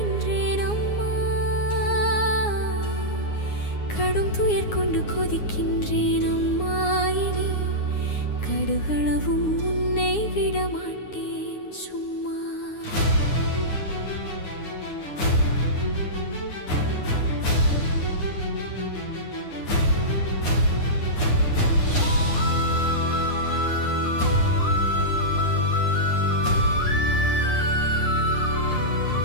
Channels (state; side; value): late; right; 9.7 ms